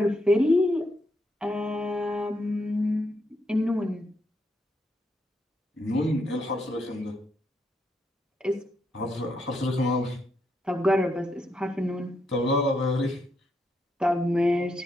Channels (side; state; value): both; normal; correlation 0.79